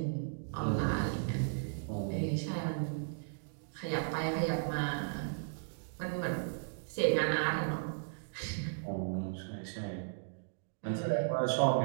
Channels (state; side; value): silent; left; digital silence